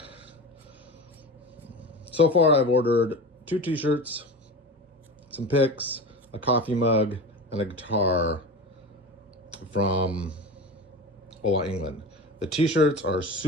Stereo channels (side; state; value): both; normal; correlation 0.29